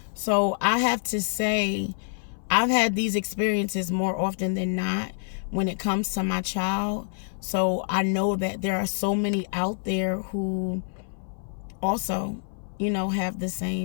So I have to say, I've had these experiences more often than not when it comes to my child. So I know that there are so many out there who also, have the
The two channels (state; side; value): silent; right; 57 dB below the other